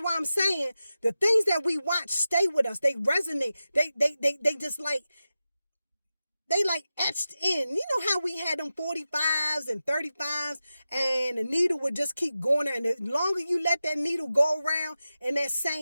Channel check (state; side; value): inverted; both; correlation -0.92